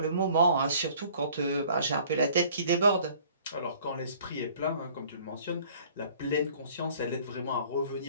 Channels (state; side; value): inverted; both; correlation -0.54